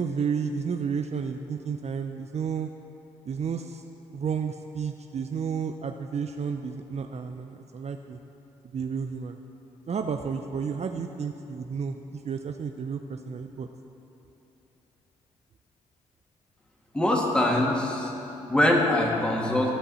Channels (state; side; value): normal; both; correlation 0.67